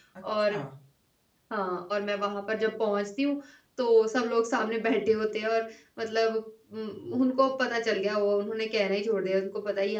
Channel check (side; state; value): both; identical; correlation 1.00